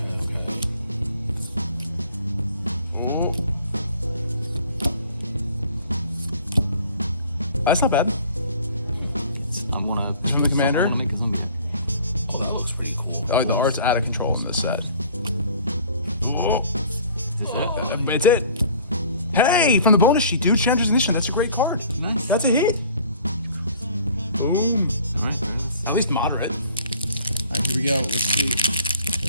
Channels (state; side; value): inverted; both; correlation -0.51